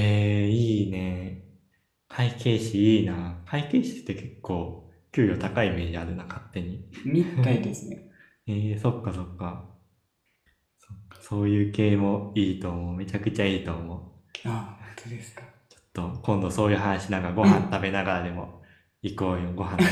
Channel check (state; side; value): identical; both; correlation 1.00